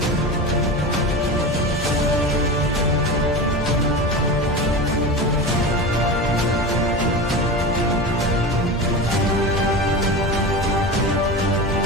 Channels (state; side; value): normal; both; correlation 0.26